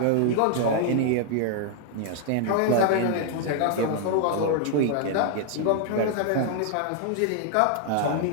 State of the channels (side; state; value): both; different; correlation 0.00